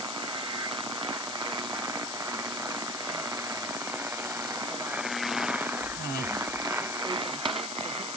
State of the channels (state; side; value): noise; left; hiss, 3 dB below the sound